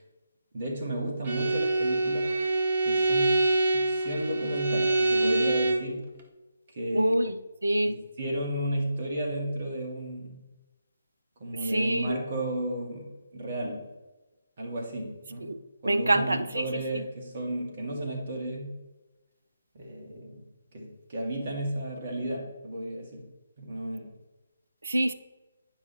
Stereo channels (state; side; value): inverted; both; correlation -0.87